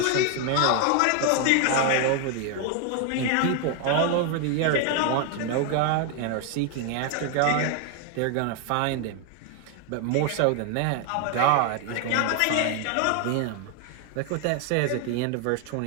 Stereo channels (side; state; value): both; different; correlation 0.00